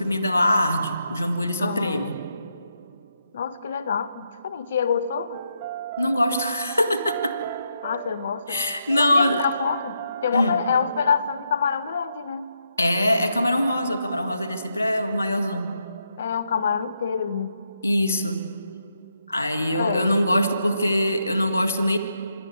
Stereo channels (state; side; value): inverted; both; correlation -0.81